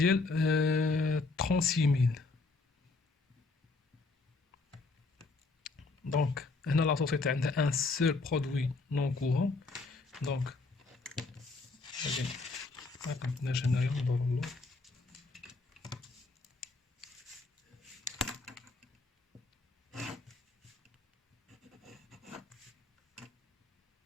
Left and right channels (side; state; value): right; quieter; 3.7 dB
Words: 36000. دونك هنا لا سوسيتي عندها ان سول برودوي نون كورون. دونك غادي ما كنتناش هنايا ندور له